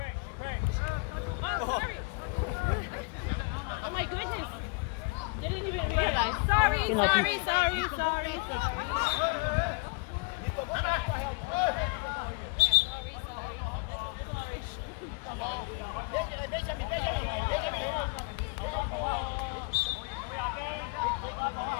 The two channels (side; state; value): right; quieter; 30.3 dB